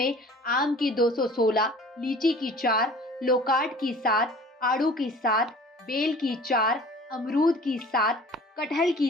आम की 216, लीची की 4, लोकाट की 7, आड़ू की 7, बेल की 4, अमरूद की 7, कटहल की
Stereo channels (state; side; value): normal; both; correlation 0.46